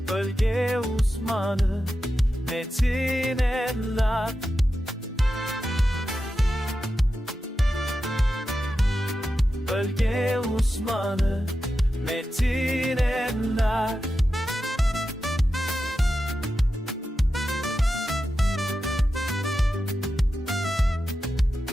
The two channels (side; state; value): both; normal; correlation 0.90